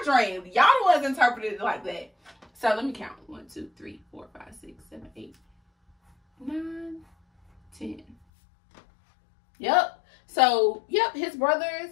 dreamed. Y'all the ones interpreted it like that. So let me count. 1, 2, 3, 4, 5, 6, 7, 8, 9, 10. Yep. So, yep, his brothers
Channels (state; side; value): drops out; right; at 8.2 s